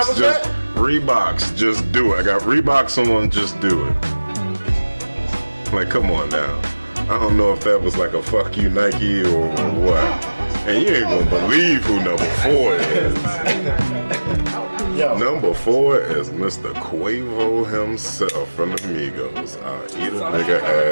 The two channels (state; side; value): inverted; both; correlation -1.00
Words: just do it. I got Reeboks on, just do it. Like, come on now. I don't know if that was like a fuck you Nike or what. And you ain't gonna believe who number 4 is. Yo, Number 4 is Mr. Quavo himself from the Migos. Eat a nigga